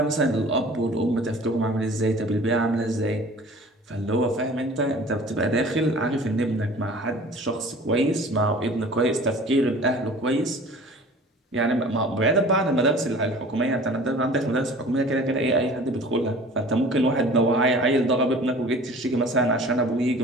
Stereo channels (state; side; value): normal; both; correlation 0.45